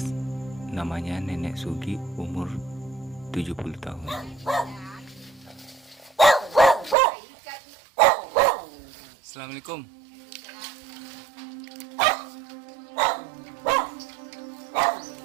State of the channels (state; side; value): drops out; left; at 7.0 s